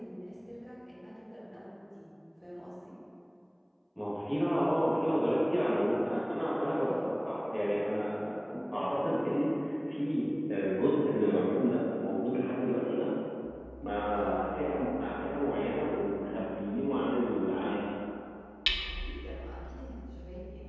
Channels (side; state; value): both; identical; correlation 1.00